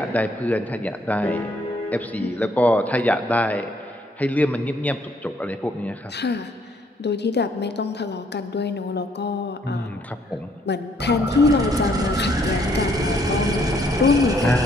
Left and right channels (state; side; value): normal; both; correlation 0.67